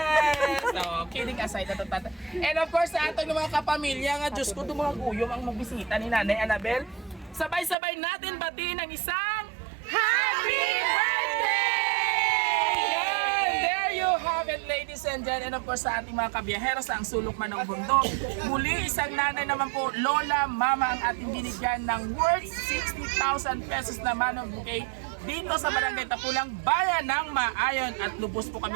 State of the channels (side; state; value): left; drops out; at 7.8 s